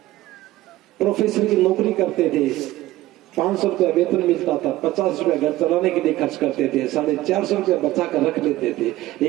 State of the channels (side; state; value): left; quieter; 16.3 dB